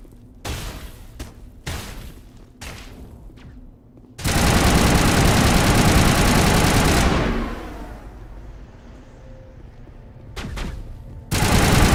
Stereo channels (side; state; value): both; identical; correlation 1.00